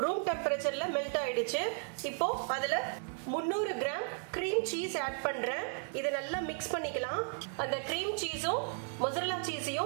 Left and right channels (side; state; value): left; silent; 55 dB below the other